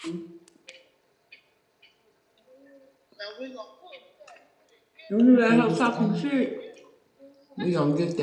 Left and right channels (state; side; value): identical; both; correlation 1.00